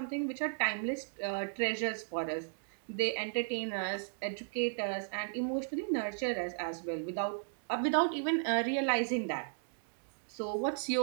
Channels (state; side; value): silent; left; digital silence